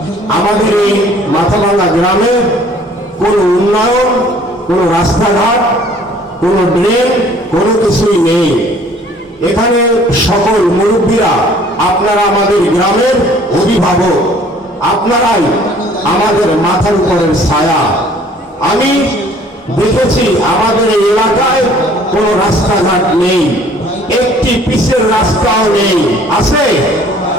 আমাদের এই মাথাভাঙ্গা গ্রামে কোনো উন্নয়ন, কোনো রাস্তাঘাট, কোনো ড্রেন, কোনো কিছুই নেই। এখানে সকল মুরব্বীরা, আপনারা আমাদের গ্রামের অভিভাবক, আপনারাই আমাদের মাথার উপরের ছায়া। আমি দেখেছি আমাদের এই এলাকায় কোনো রাস্তাঘাট নেই, একটি পিচের রাস্তাও নেই, আছে?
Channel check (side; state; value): both; normal; correlation 0.55